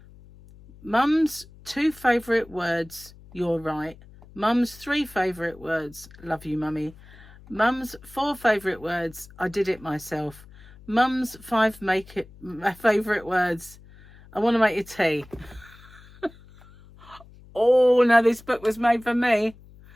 Mum's 2 favourite words, you're right. Mum's 3 favourite words, love you, Mummy. Mum's 4 favourite words, I did it myself. Mum's 5 favourite words, I want to make you tea. Oh, no, this book was made for me.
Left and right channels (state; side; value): noise; left; hum, 22 dB below the sound